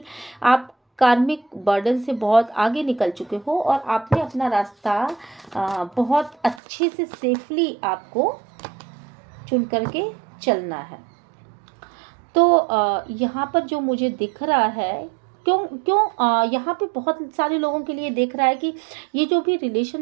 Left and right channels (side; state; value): left; drops out; at 6.6 s